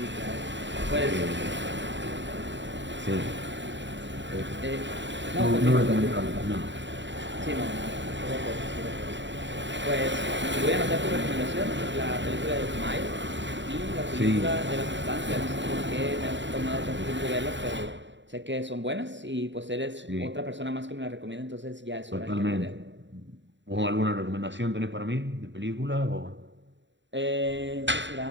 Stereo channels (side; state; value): left; late; 0.53 ms